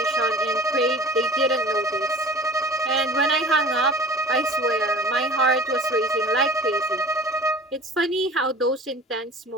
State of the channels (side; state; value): both; normal; correlation 0.43